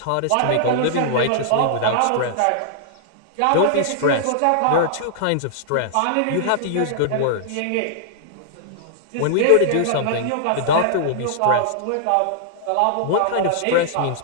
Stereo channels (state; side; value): different; both; correlation -0.01